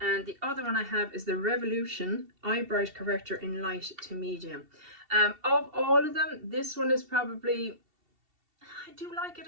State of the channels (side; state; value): left; late; 2.7 ms